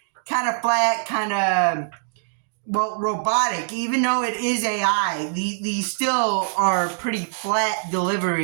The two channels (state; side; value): silent; left; digital silence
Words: kind of flat, kind of, robotic. Even though it is AI, these still are pretty flat